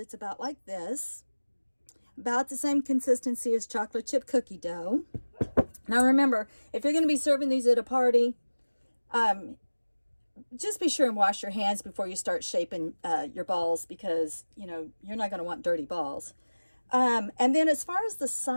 about like this, about the same consistency as chocolate chip cookie dough. Now remember, if you're going to be serving these at a party, just be sure and wash your hands before you start shaping your balls, because you're not going to want dirty balls. And then as far as the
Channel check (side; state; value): both; inverted; correlation -1.00